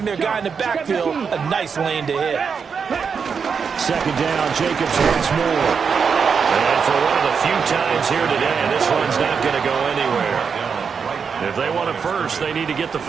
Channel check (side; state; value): left; quieter; 6.1 dB